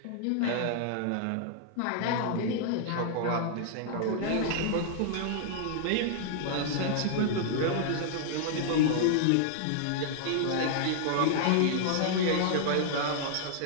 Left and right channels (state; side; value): different; both; correlation -0.01